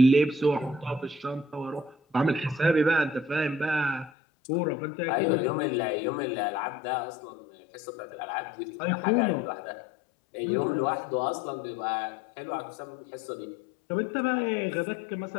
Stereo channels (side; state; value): right; drops out; at 4.1 s